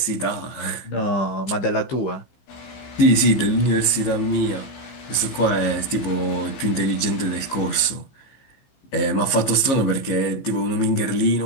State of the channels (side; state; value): right; late; 15 ms